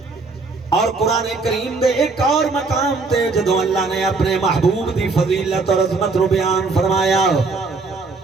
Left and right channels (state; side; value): quieter; left; 4.0 dB